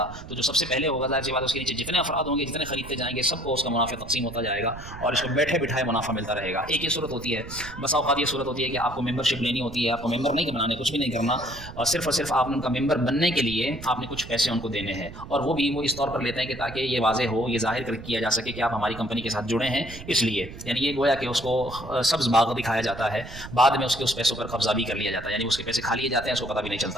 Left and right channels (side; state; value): right; noise; rumble, 13 dB below the sound